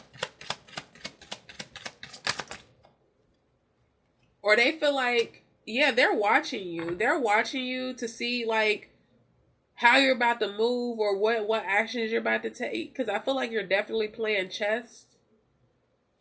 Or they feel like, yeah, they're watching you. They're watching you to see like how you're about to move or what actions you're about to take. Because I feel like you're definitely playing chess.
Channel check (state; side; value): identical; both; correlation 1.00